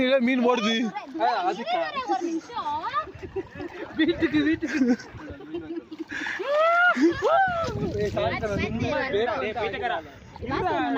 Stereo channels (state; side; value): identical; both; correlation 1.00